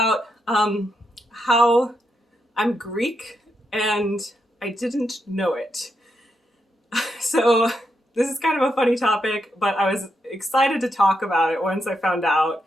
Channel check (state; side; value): normal; both; correlation 0.82